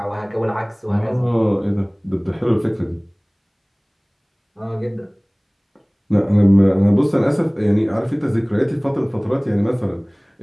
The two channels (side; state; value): both; identical; correlation 1.00